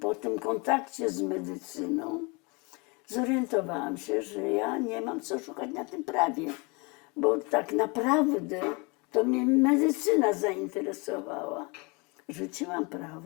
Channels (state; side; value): quieter; right; 29.3 dB